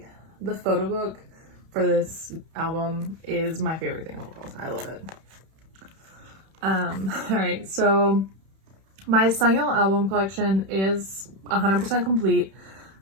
the photo book for this album is my favorite thing in the world. I love it. Alright, so my Sangyeol album collection is 100% complete,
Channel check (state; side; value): late; left; 31 ms